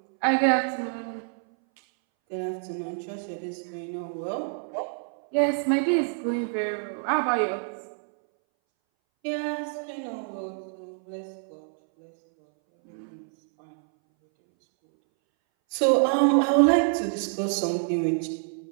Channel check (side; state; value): left; silent; 60 dB below the other